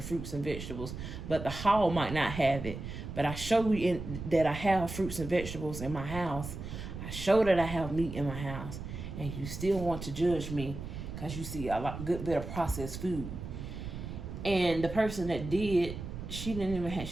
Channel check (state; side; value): noise; right; rumble, 8 dB below the sound